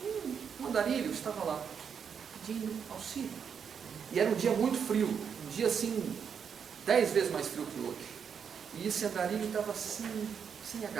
uma Andarilho estava lá, pedindo auxílio. E era um dia muito frio, um dia assim, 10 vezes mais frio que hoje. E esse andarilho estava assim, sem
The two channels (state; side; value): quieter; left; 7.1 dB